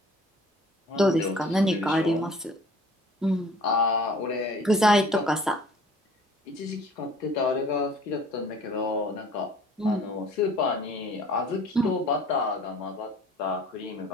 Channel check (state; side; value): normal; both; correlation 0.50